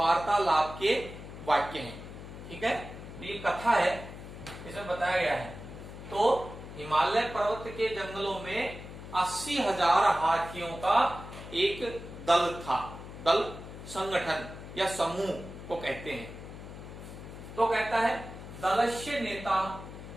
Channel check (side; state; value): left; noise; hum, 12 dB below the sound